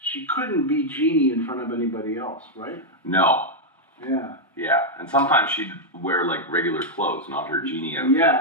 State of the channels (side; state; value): both; normal; correlation -0.03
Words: She couldn't be genie in front of anybody else, right? No. Yeah. Yeah, and sometimes she'd wear like regular clothes, not her genie outfit.